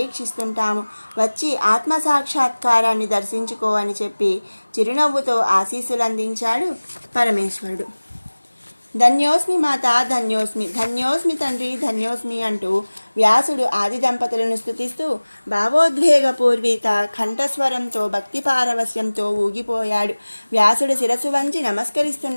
వచ్చి ఆత్మసాక్షాత్కారాన్ని దర్శించుకో అని చెప్పి చిరునవ్వుతో ఆశీస్సులు అందించాడు పరమేశ్వరుడు. ధన్యోస్మి మాత, ధన్యోస్మి, ధన్యోస్మి తండ్రి, ధన్యోస్మి అంటూ వ్యాసుడు ఆది దంపతులను స్తుతిస్తూ భావోద్వేగపూర్విత కంఠస్వరంతో భక్తి పారవస్యంతో ఊగిపోయాడు. వ్యాసుడు శిరస్సు వంచి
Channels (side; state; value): both; inverted; correlation -1.00